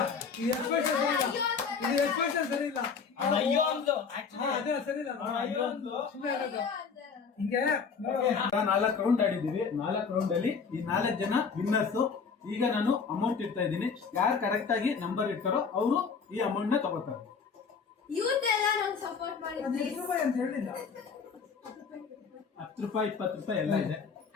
ಈ ಎಕ್ಸ್ಪ್ರೆಷನ್ ಸರಿ ಇಲ್ಲ ಅಯ್ಯೋ ಅಂದ್ಲು ಅದೇ ಸರಿ ಇಲ್ಲ ಅಯ್ಯೋ ಅಂದ್ಲು. ಸುಮ್ಮನೆ ಆಗೋದು ಹಿಂಗೆ ನೋಡು 4 ರೌಂಡ್ ಆಡಿದೀವಿ. 4 ರೌಂಡ್ ಅಲ್ಲಿ ಈ 4 ಜನ ವಿನ್ನರ್ಸ್. ಈಗ ನಾನು ಅಮೌಂಟ್ ಇಡ್ತಾ ಇದ್ದೀನಿ. ಯಾರು ಕರೆಕ್ಟ್ ಆಗಿ ನಂಬರ್ ಇಡ್ತಾರೋ ಅವರು ಈ ಅಮೌಂಟ್ ನ ತಗೋತಾರೆ. ಯೂತ್ ಎಲ್ಲ ನಂಗೆ ಸಪೋರ್ಟ್ ಮಾಡಿ ಅದು ಎಷ್ಟು ರೂಪಾಯಿ ಅಂತ ಹೇಳಿಲ್ಲ 10 ರೂಪಾಯಿ 20 ರೂಪಾಯಿ ಎಲ್ಲ ಇದೆ.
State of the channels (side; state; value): right; quieter; 5.7 dB